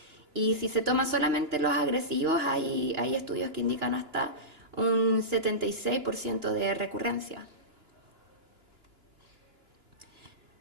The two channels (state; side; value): late; left; 2.9 ms